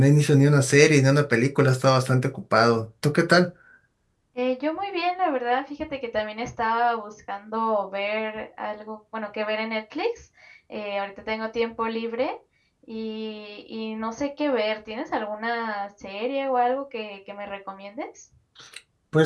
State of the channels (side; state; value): both; identical; correlation 1.00